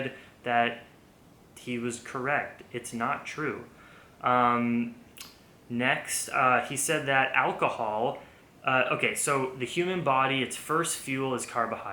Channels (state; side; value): identical; both; correlation 1.00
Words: that he was correct. It's not true. Next, he said that alcohol... okay, so the human body, its first fuel is